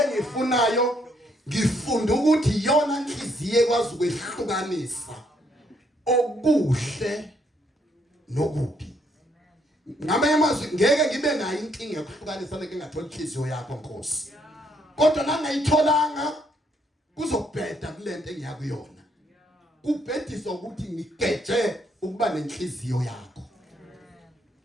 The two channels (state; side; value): normal; both; correlation 0.71